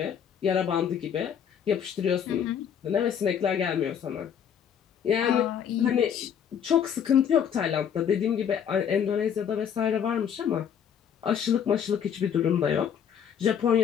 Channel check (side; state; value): right; quieter; 8.3 dB